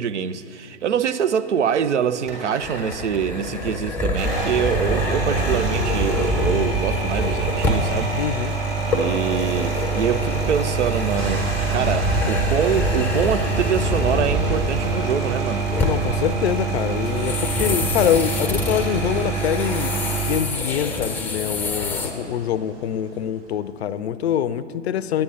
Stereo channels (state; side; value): normal; both; correlation 0.26